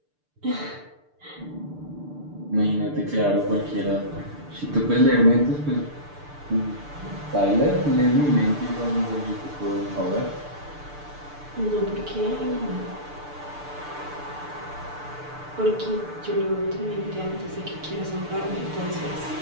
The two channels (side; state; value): left; late; 6.8 ms